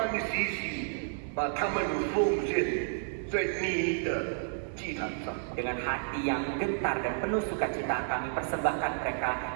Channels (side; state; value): left; silent; 57 dB below the other